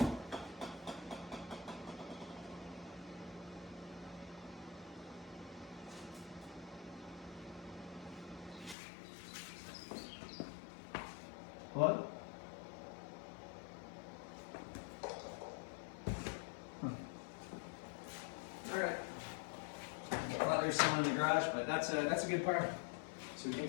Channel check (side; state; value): right; drops out; at 8.8 s